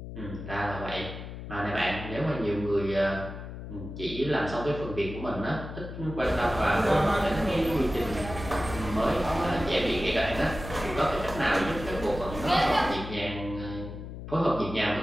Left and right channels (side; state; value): left; noise; hum, 10 dB below the sound